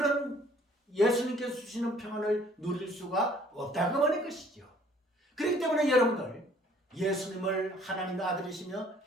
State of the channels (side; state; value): both; normal; correlation 0.58